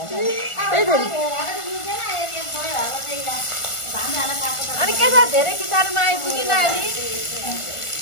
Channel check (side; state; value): right; late; 1.4 ms